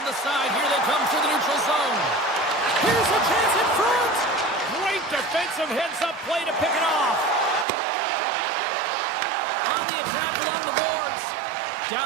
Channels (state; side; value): drops out; left; at 7.7 s